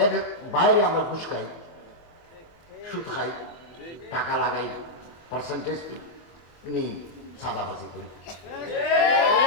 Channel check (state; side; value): late; right; 24 ms